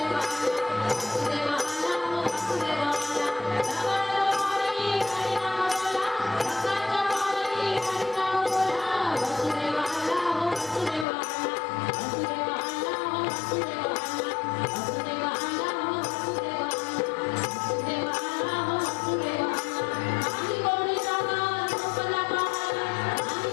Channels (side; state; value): right; drops out; at 11.1 s